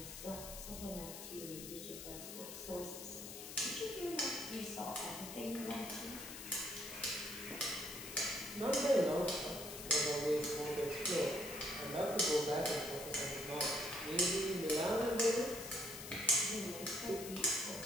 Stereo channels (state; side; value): noise; left; hiss, 10 dB below the sound